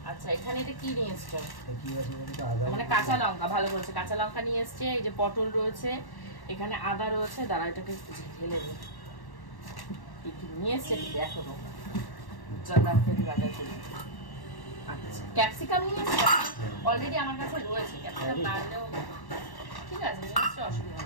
আচ্ছা এখানে এটা কি নিয়ে এসছো? মানে কাঁচা লঙ্কা, ভালো বলছে, কাঁচা লঙ্কা নিয়ে এসছে। এই যে পটল রয়েছে, এখানে আদা রয়েছে, দাঁড়া এটাকে ঢেলে দিই। নিয়ে এসছে দেখো, আচ্ছা ক্যাপসিকাম নিয়ে এসছে, অলরেডি আমার কাছে রয়েছে। ক্যাপসিকাম না আনলেও ঠিক আছে, নিয়ে এসছে, অসুবিধা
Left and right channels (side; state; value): right; late; 1.1 ms